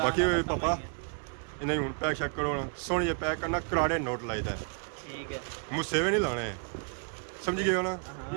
पापा इन्हें हुन पैक चेक करो सोनिए पैक करना कराड़े नोट लाइदा है ठीक है मुझसे भी नहीं लाने समझ गए हो ना।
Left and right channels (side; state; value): left; quieter; 38.5 dB